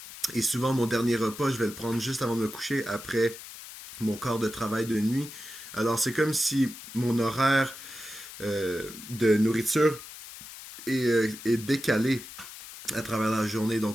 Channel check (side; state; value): left; noise; hiss, 14 dB below the sound